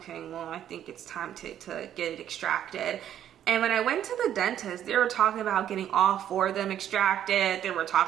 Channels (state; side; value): quieter; left; 10.6 dB